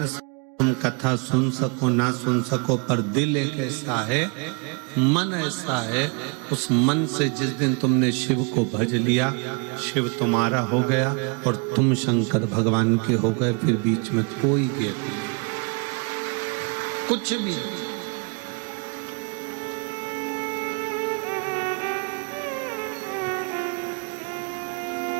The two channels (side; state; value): left; quieter; 34.2 dB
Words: से तुम कथा सुन सको ना सुन सको, पर दिल एक ऐसा है, मन ऐसा है, उस मन से जिस दिन तुमने शिव को भज लिया, शिव तुम्हारा हो गया और तुम शंकर भगवान के हो गए। फिर बीच में कोई भेद नहीं, कुछ भी नहीं।